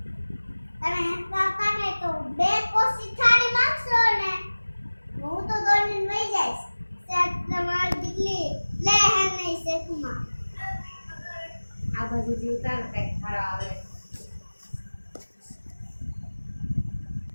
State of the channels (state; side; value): inverted; both; correlation -1.00